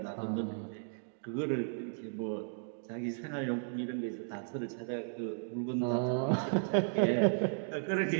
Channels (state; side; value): silent; left; digital silence